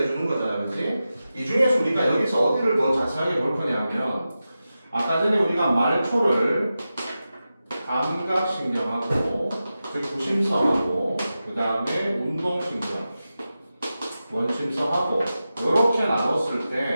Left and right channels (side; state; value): both; inverted; correlation -0.92